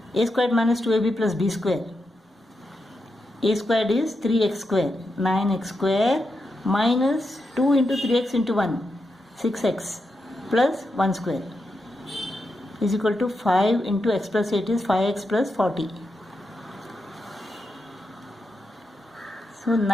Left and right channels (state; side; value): normal; both; correlation 0.86